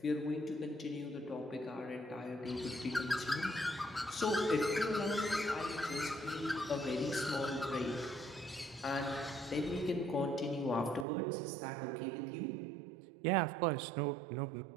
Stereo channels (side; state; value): left; drops out; at 11.1 s